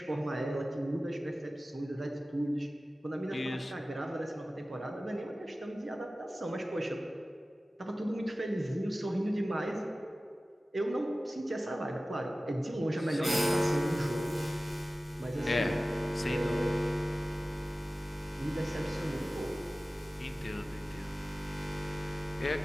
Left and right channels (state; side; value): normal; both; correlation 0.96